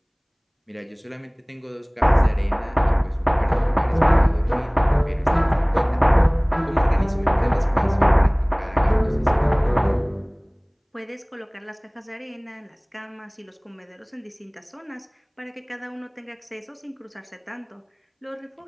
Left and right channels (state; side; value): identical; both; correlation 1.00